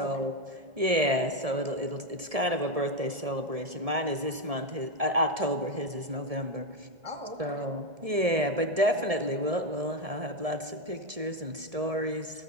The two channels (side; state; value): left; late; 1.7 ms